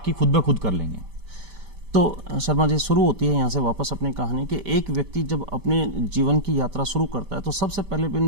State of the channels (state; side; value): late; left; 5.1 ms